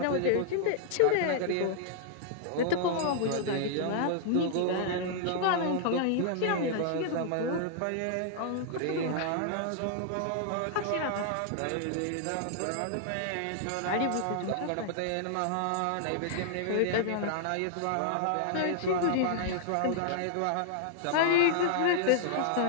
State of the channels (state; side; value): different; both; correlation -0.01